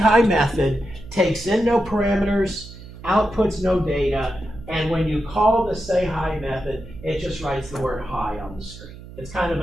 method takes in no parameters, outputs no data, and when you call the say hi method, it just writes the word hi on the screen. It's kind of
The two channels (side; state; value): right; noise; hum, 16 dB below the sound